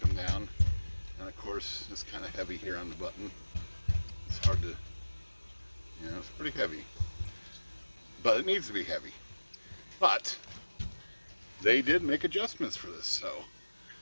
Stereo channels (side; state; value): both; inverted; correlation -1.00